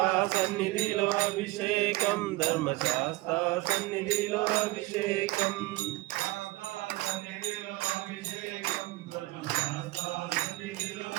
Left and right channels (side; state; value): left; quieter; 19.9 dB